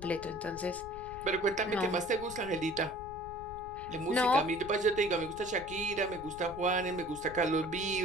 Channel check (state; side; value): noise; left; rumble, 15 dB below the sound